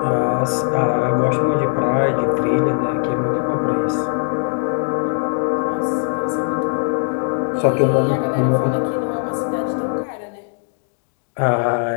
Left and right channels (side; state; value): right; silent; 58 dB below the other